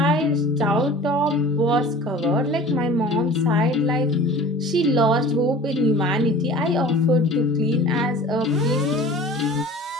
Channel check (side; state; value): both; normal; correlation 0.42